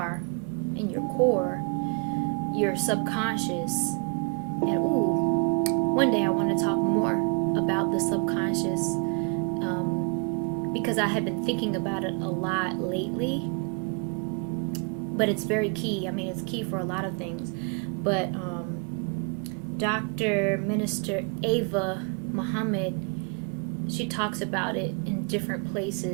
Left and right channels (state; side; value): quieter; left; 36.1 dB